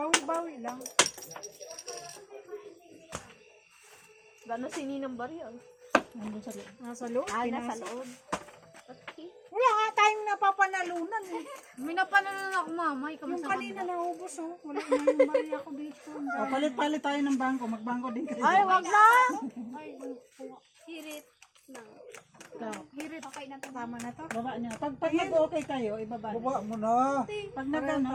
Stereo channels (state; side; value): identical; both; correlation 1.00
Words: lang. Gano'n si Ninang Baryo? Nandun sa loob. Nasa loob. Nasa pinasok. loob. Okay. Wala nga tayong napapanalunan eh. May napanalan ako, mama. Ikaw Yung masama. kanina naubos oh. Wala na yung bari ako dito. O, palit-palit tayo ng bangko. Magbangko din kayo. Ay, wag na! Hirit. Ikaw, Hirit. Okay na to. Tama na to. baba niya. Pag nag-okay kayo, ibaba niyo. Baba mo na. Pag nag-ano,